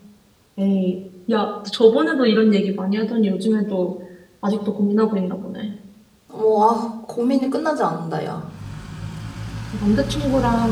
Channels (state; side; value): identical; both; correlation 1.00